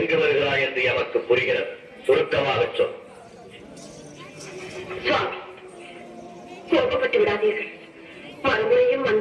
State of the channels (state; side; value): identical; both; correlation 1.00